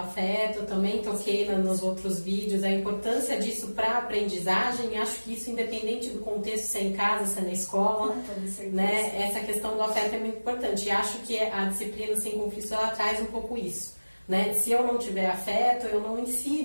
eu também toquei nos outros vídeos, a importância disso para a aprendizagem, acho que isso independente do contexto, se é em casa, se é na escola, né? Essa questão do afeto é muito importante e acho que a disciplina sem conflito ela traz um pouco isso, né? Se eu não tiver afeto, eu não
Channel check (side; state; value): both; inverted; correlation -1.00